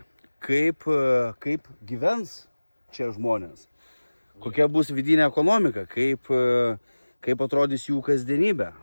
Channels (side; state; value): both; inverted; correlation -1.00